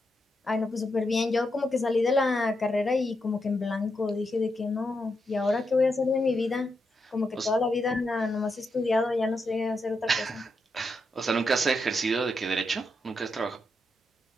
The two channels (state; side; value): normal; both; correlation 0.84